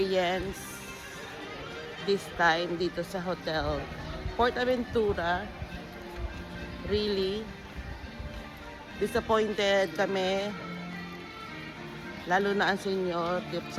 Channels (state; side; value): identical; both; correlation 1.00